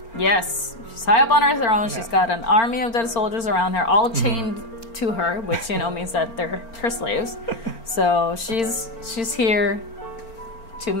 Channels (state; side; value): late; right; 4.4 ms